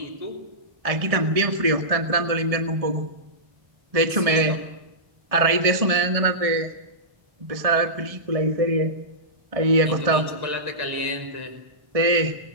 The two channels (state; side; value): late; left; 1.6 ms